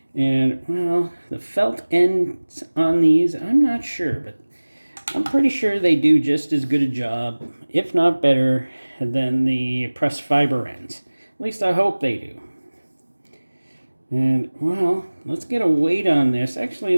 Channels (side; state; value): both; inverted; correlation -1.00